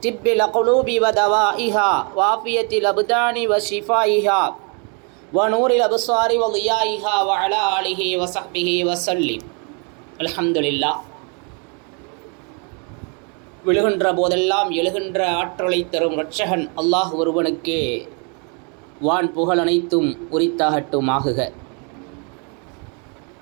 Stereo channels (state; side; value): quieter; left; 36.4 dB